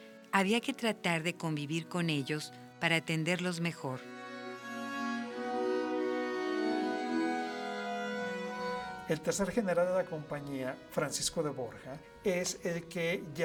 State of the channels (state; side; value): identical; both; correlation 1.00